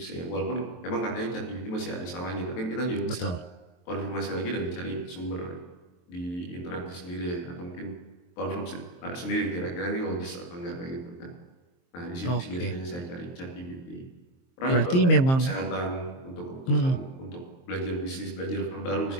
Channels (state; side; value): late; right; 23 ms